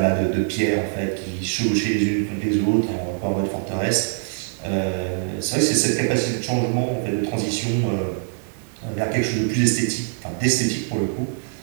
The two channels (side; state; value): left; silent; 63 dB below the other